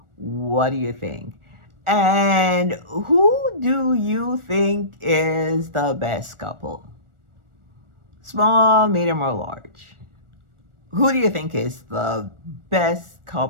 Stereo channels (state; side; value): late; left; 1.4 ms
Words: what do you think? And who do you think is the best couple? Small, medium, or large? Who do you think is the best